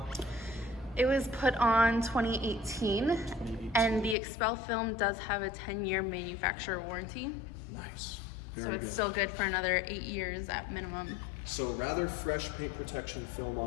It was put on 2018, and the XPEL film does have a 10-year manufacturer warranty. Nice. So it's still good for another 8 years at minimum. So rather fresh paint protection film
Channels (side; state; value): right; drops out; at 4.2 s